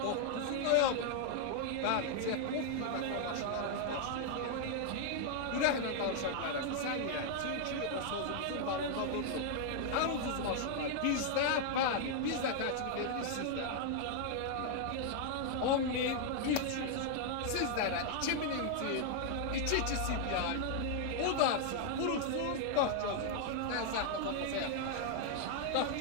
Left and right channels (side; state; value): both; different; correlation 0.00